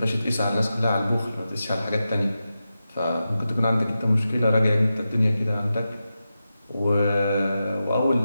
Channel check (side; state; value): both; inverted; correlation -0.91